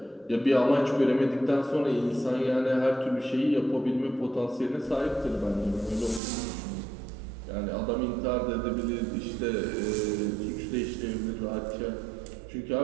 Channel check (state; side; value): drops out; left; at 6.2 s